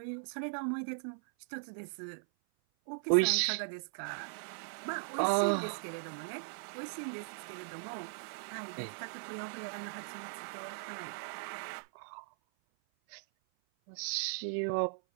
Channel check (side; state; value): left; silent; 52 dB below the other